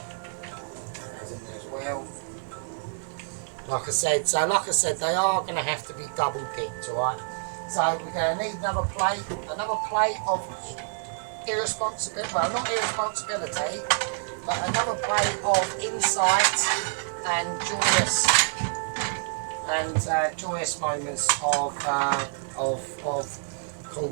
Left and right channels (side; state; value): left; silent; digital silence